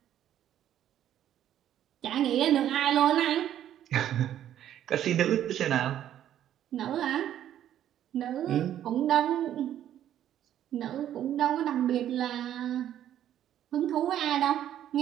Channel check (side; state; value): left; quieter; 11.1 dB